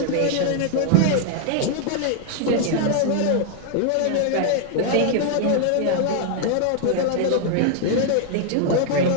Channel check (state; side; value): different; both; correlation 0.00